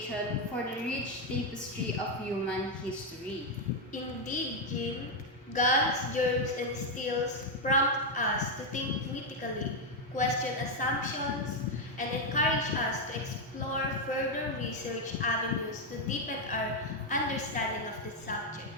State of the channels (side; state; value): both; normal; correlation 0.03